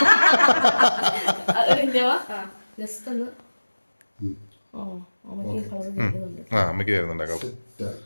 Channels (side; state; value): both; inverted; correlation -1.00